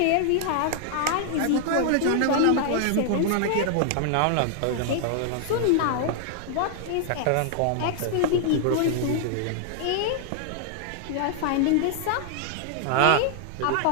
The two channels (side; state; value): both; different; correlation -0.01